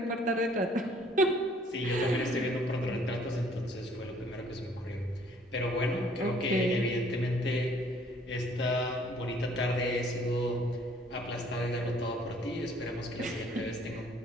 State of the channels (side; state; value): both; normal; correlation 0.59